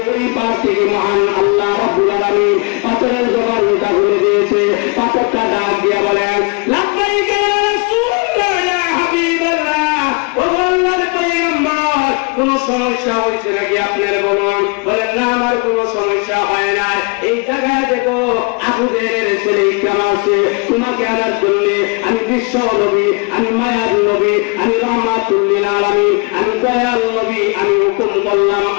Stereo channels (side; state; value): right; quieter; 30.9 dB